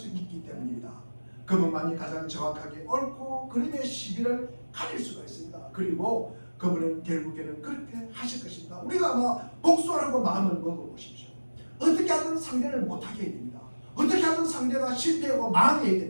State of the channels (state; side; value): inverted; both; correlation -1.00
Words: 있기 때문입니다. 그분만이 가장 정확하게 옳고 그름의 시비를 가릴 수가 있습니다. 그리고 그분은 결국에는 그렇게 하실 것입니다. 우리가 아마 복수하라고 마음을 먹어보십시오. 어떻게 하든 상대를 못하게 해야 됩니다. 어떻게 하든 상대가 실패하고 망해야